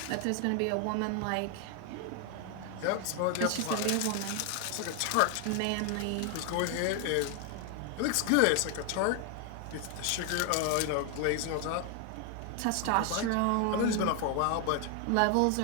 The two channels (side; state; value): both; different; correlation 0.01